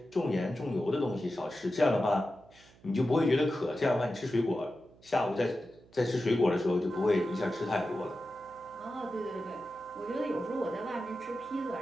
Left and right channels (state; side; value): noise; right; hum, 26 dB below the sound